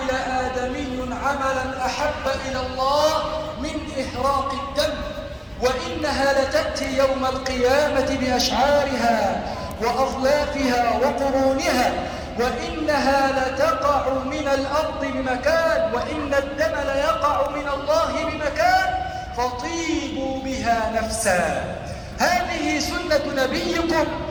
آدمي عملا أحب إلى الله من إهراق الدم، وإنها لتأتي يوم القيامة بأشعارها وأظلافها وقرونها، وإنها لتقع من الأرض بمكان، وإن الدم ليقع من الله بمكان، فطيبوا بها نفسا. هذه سنة نبيكم،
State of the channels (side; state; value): both; identical; correlation 1.00